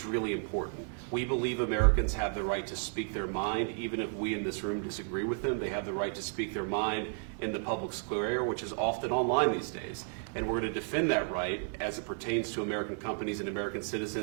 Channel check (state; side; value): silent; left; 56 dB below the other